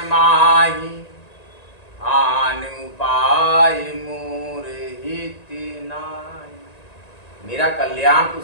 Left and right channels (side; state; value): right; late; 1.9 ms